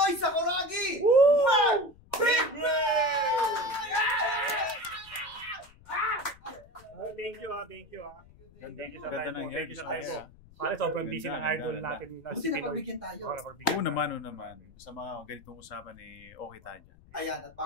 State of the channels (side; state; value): left; noise; rumble, 24 dB below the sound